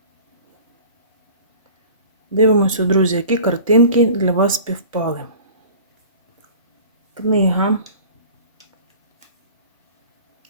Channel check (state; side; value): inverted; both; correlation -0.42